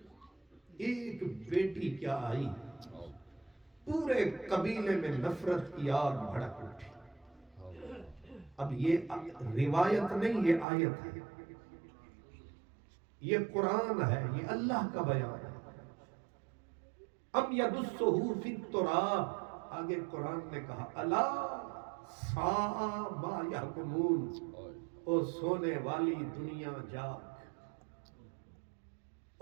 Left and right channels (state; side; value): drops out; left; at 10.7 s